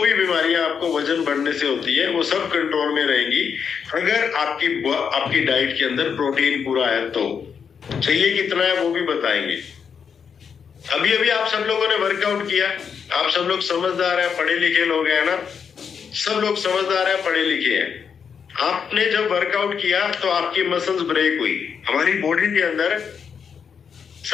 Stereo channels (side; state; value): right; quieter; 6.7 dB